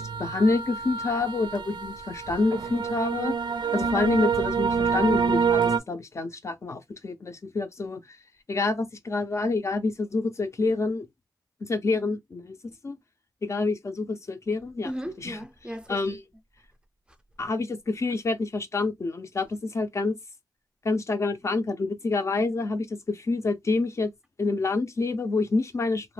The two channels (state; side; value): normal; both; correlation 0.73